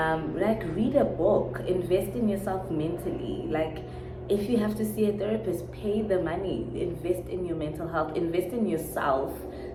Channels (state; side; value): identical; both; correlation 1.00